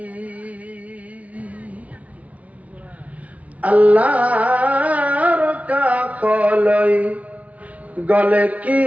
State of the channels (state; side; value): late; left; 0.068 ms